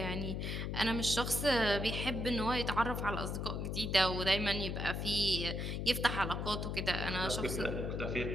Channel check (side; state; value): left; noise; hum, 2 dB below the sound